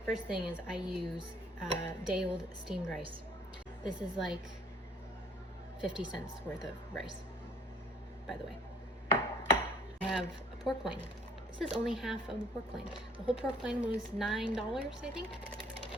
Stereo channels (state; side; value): normal; both; correlation 0.56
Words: First thing is I use day-old steamed rice. This is like 50 cents worth of rice, by the way. I have a pork loin. This is only half of the pork loin. The whole pork loin was $9, I think.